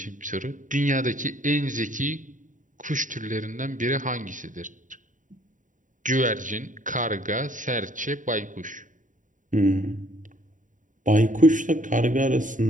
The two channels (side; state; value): left; late; 0.37 ms